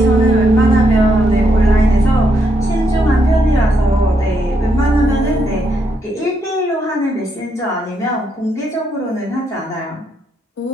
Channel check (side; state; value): both; normal; correlation 0.77